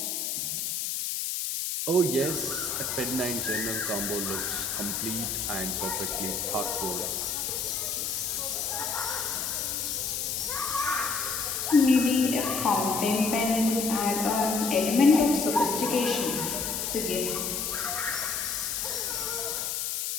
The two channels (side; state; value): left; noise; hiss, 1 dB below the sound